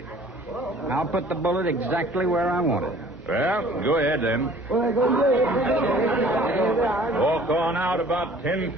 I'll put the bullet exactly where I want it. Well, go ahead then. Walk on out about 10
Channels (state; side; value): normal; both; correlation 0.52